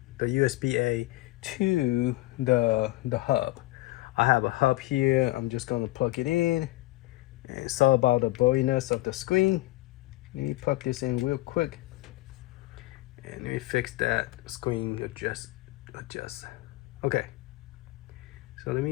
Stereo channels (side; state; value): right; quieter; 19.1 dB